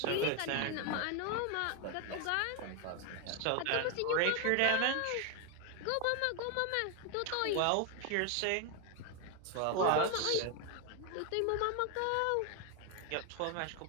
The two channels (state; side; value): different; both; correlation 0.01